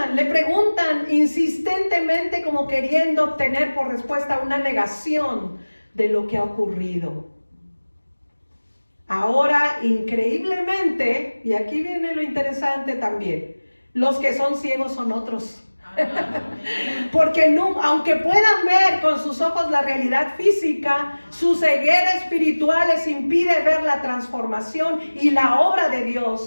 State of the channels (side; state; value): both; inverted; correlation -1.00